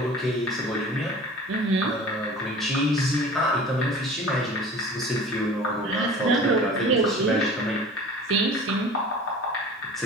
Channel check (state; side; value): normal; both; correlation 0.41